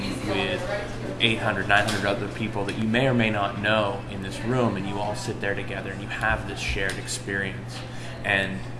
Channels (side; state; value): both; identical; correlation 1.00